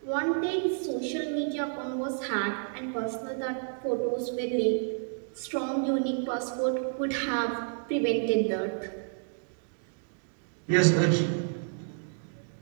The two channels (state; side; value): silent; left; digital silence